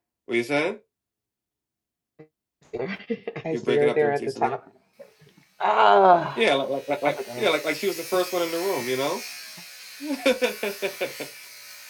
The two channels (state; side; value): identical; both; correlation 1.00